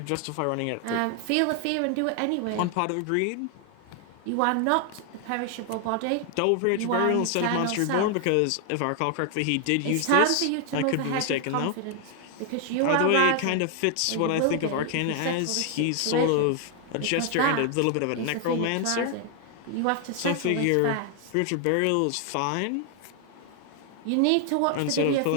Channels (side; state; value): both; different; correlation 0.00